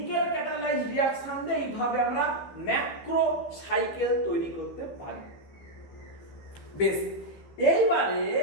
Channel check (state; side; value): late; right; 15 ms